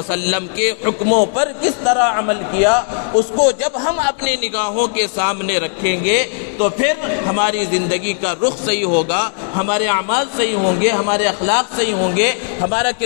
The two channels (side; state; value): right; silent; digital silence